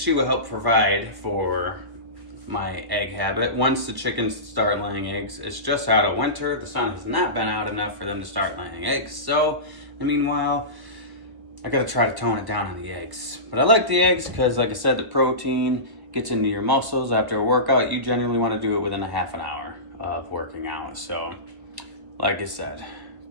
will help provide for my egg habit. Once the chickens start laying eggs, it's just out of winter. The sun has not been out enough for them to start laying eggs. So, meanwhile, I gotta try to tone it down on the eggs. But I like the eggs because, like I said, the protein gets into your muscles after a workout. You generally want to do it within a half an hour of working out. So, like I said,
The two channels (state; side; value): late; left; 1.1 ms